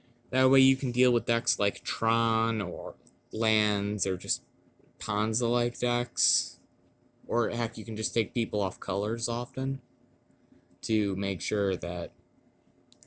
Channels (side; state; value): both; identical; correlation 1.00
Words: That way you can deal with decks like Tron or lands or just Ponza-like decks. Or heck, you can just take people off colors often to make sure that